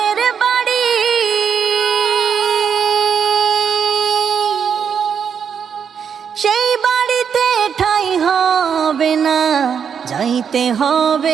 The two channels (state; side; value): quieter; left; 7.3 dB